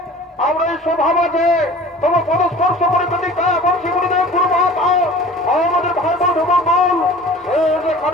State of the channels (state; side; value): normal; both; correlation 0.43